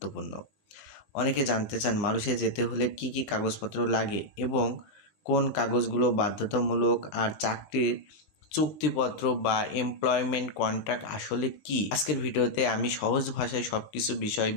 অনেকে জানতে চান মালয়েশিয়া যেতে হলে কি কি কাগজপত্র লাগে এবং কোন কাগজগুলো বাধ্যতামূলক, আর চাকরির চুক্তিপত্র বা এমপ্লয়মেন্ট কন্ট্রাক্ট আসলে কি। আজকের ভিডিওতে আমি সহজ ভাষায় সবকিছু বিষয়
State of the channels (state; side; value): late; right; 20 ms